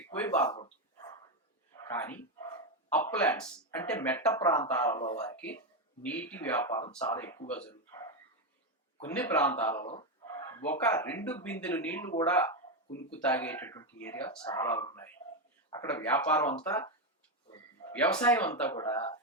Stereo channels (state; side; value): normal; both; correlation 0.08